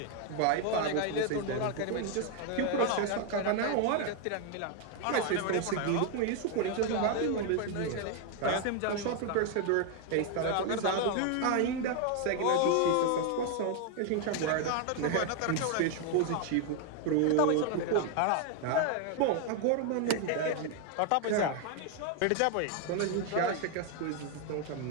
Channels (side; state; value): both; different; correlation 0.00